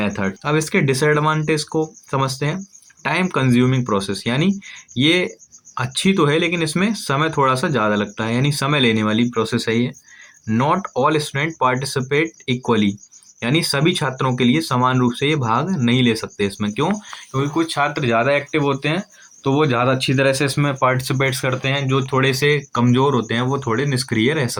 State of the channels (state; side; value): identical; both; correlation 1.00